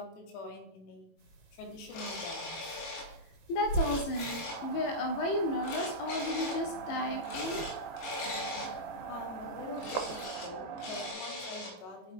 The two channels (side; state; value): right; late; 18 ms